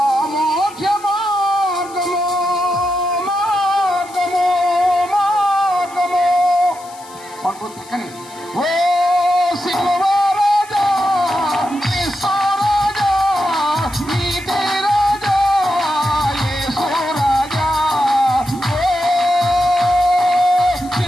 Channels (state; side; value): noise; left; hiss, 21 dB below the sound